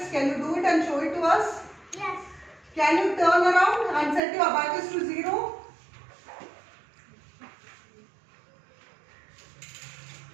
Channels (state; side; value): drops out; left; at 4.2 s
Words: Can you do it and show it to us? Yes. Can you turn around and set your Abacus to 0?